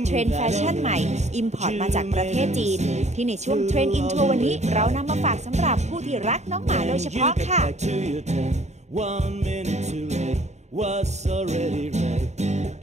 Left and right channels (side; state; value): left; late; 0.33 ms